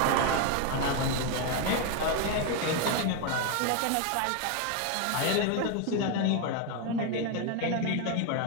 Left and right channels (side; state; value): both; different; correlation 0.01